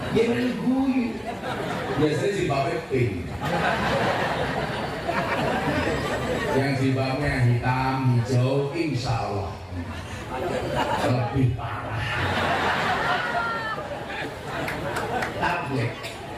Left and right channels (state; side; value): identical; both; correlation 1.00